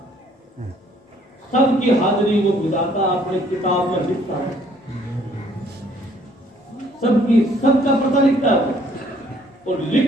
सबकी हाजिरी वो विधाता अपनी किताब में लिखता है, सबका पता लिखता है, और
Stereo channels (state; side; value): normal; both; correlation 0.62